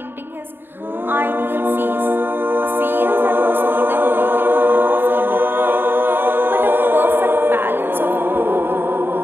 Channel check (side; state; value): left; late; 0.10 ms